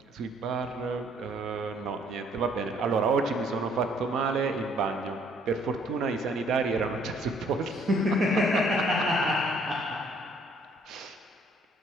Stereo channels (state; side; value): normal; both; correlation 0.63